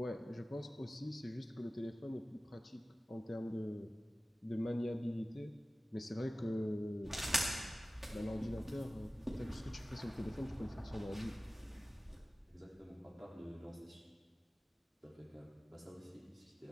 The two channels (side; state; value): both; normal; correlation 0.96